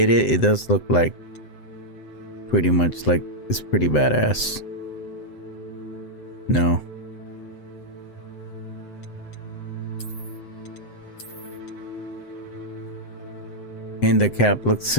does look like pretty much like it's pretty badass. No. And the cap looks,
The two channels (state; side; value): late; right; 7.9 ms